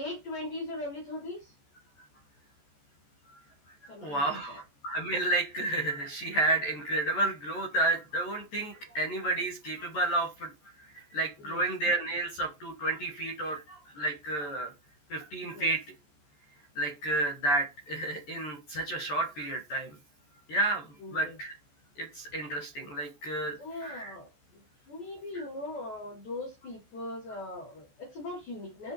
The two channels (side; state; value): right; late; 14 ms